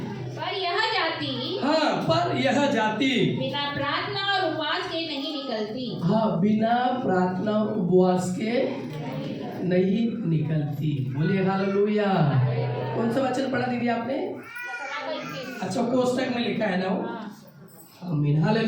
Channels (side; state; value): both; identical; correlation 1.00